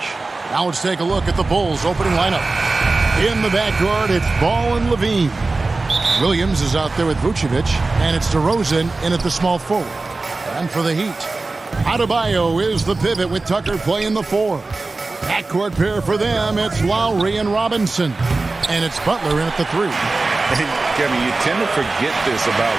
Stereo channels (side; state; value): left; quieter; 3.5 dB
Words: Now let's take a look at the Bulls' opening lineup. In the backcourt, it's Ball and Levine. Williams is out there with Vucevic, and it's DeRozan in at the small forward. And for the Heat, Adebayo is the pivot with Tucker playing the 4. Backcourt pair for them, it's Lowry and Robinson. And it's Butler in at the 3. Kevin, you tend to forget this about